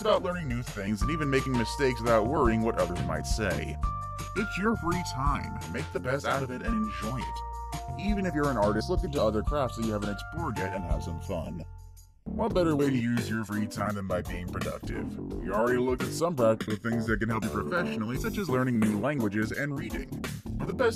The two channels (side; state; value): both; identical; correlation 1.00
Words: learning new things and even making mistakes without worrying what others might say. It's your free time. Make the best out of it and enjoy it. Even if you're an artist, look into other crafts that you haven't explored yet and have some fun. What better way to use your free time than by being productive? We already looked at some practical things that can help you professionally, such as learning new languages and reading. But the